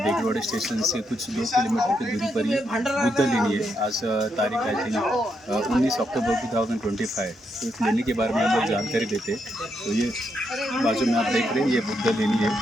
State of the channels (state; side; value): normal; both; correlation 0.80